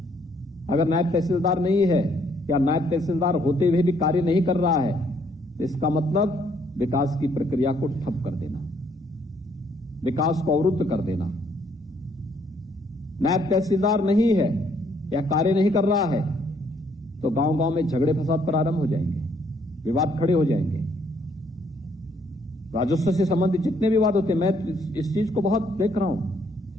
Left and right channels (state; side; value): normal; both; correlation 0.68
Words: अगर नायब तहसीलदार नहीं है या नायब तहसीलदार होते हुए भी कार्य नहीं कर रहा है तो इसका मतलब विकास की प्रक्रिया को ठप कर देना, विकास को अवरुद्ध कर देना। नायब तहसीलदार नहीं है या कार्य नहीं कर रहा है तो गांव-गांव में झगड़े फसाद प्रारंभ हो जाएंगे, विवाद खड़े हो जाएंगे। राजस्व से संबंधित जितने विवाद होते हैं, मैं इस चीज को बहुत देख रहा हूं,